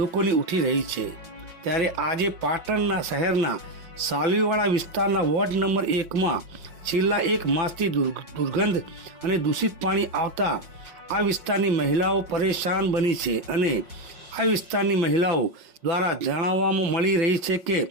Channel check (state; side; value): late; left; 5.5 ms